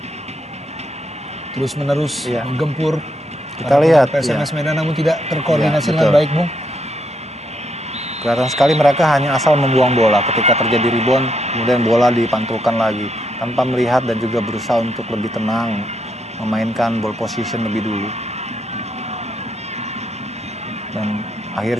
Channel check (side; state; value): both; normal; correlation 0.77